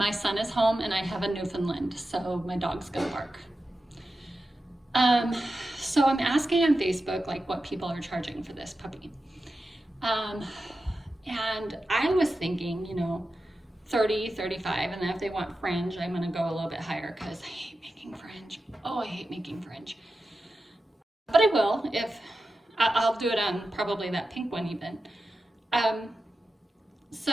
son is home and I have a Newfoundland, so my dog's gonna bark. So I'm asking on Facebook what people are charging for this puppy. And I was thinking, 30, 35, and then if they want fringe, I'm gonna go a little bit higher because I hate making fringe. Oh, I hate making fringe. But I will, if I'll do it on probably that pink one even.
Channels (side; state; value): both; normal; correlation 0.91